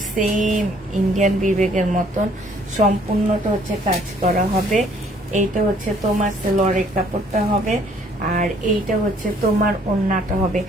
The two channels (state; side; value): normal; both; correlation 0.61